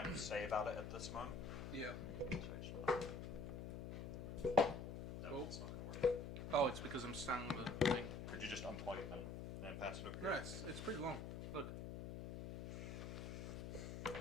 of say about it at this moment. Yeah. It's not going to work. Oh, it's because I'm standing on the thing. Could you just unplug it then and pass it over here? Yeah, it's pretty long. Look.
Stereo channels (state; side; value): noise; left; hum, 6 dB below the sound